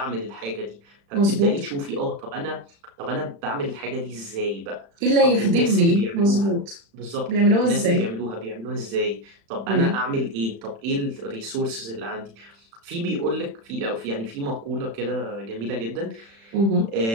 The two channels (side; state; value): left; late; 35 ms